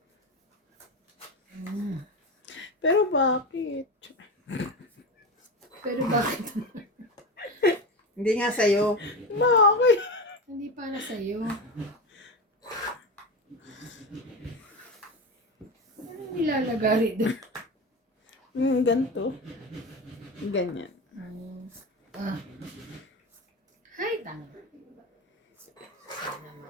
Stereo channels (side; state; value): both; normal; correlation 0.22